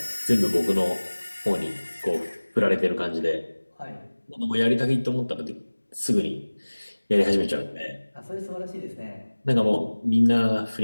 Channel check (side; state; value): both; inverted; correlation -1.00